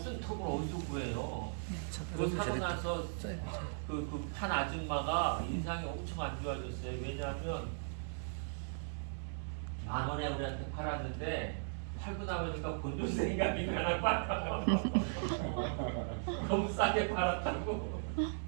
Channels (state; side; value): silent; left; 53 dB below the other